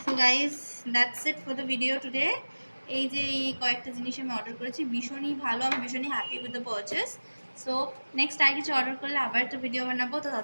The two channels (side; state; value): both; inverted; correlation -1.00